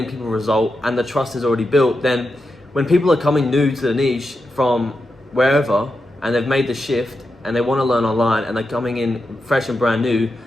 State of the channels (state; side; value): normal; both; correlation 0.88